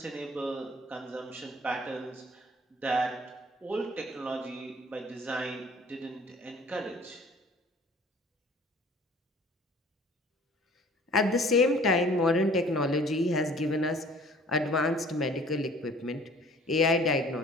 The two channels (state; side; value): normal; both; correlation 0.51